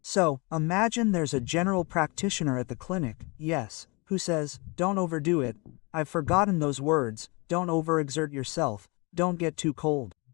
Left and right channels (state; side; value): quieter; right; 28.6 dB